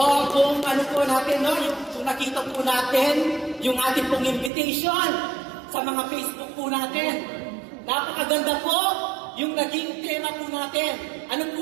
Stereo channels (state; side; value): drops out; left; at 4.5 s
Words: kung ano po natin, no, kung nakita po natin yung ating pong invitation sa mga Facebook po natin, napakaganda po yung naging tema po natin. Ano